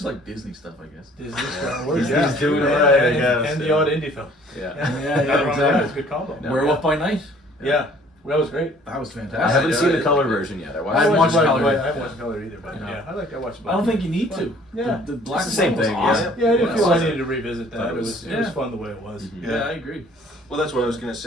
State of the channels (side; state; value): both; normal; correlation 0.56